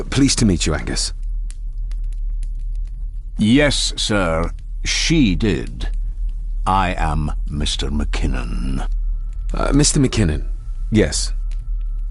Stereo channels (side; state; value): both; identical; correlation 1.00